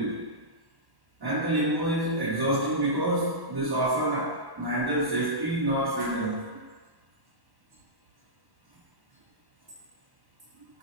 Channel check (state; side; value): late; left; 1.1 ms